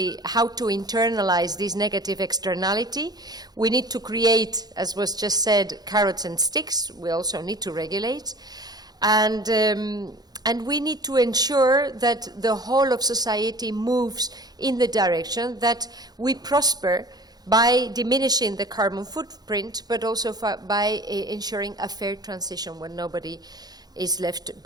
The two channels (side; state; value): left; late; 0.19 ms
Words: how to internalize this negative externality. We need to create, as was just said, carrots and sticks. We also need to regulate. And we need to ensure that the whole of society moves in the direction that we prosper by diminishing the carbon footprint, but also by ensuring a fair transition when nobody is left